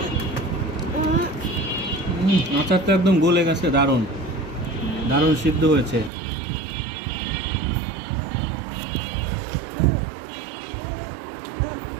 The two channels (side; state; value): left; drops out; at 6.1 s